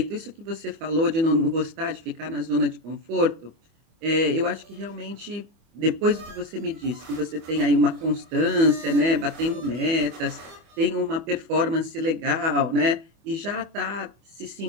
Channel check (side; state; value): left; late; 25 ms